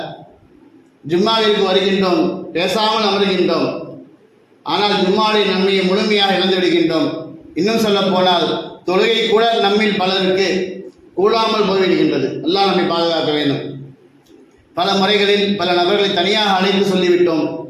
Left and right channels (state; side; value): identical; both; correlation 1.00